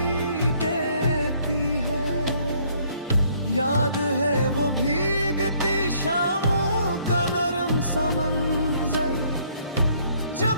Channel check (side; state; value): both; inverted; correlation -0.64